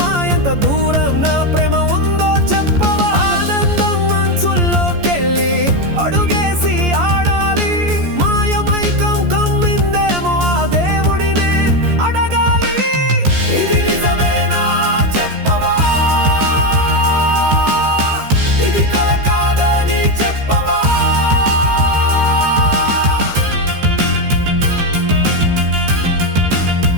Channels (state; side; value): late; left; 14 ms